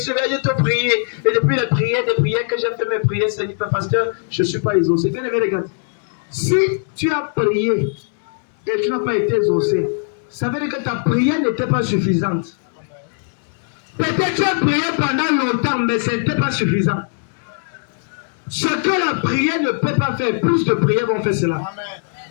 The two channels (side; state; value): right; silent; 66 dB below the other